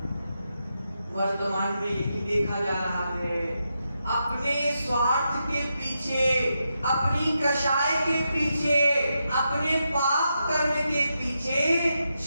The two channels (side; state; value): both; inverted; correlation -0.85